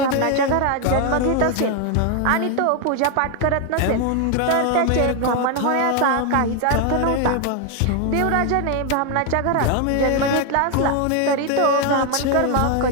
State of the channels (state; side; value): different; both; correlation 0.01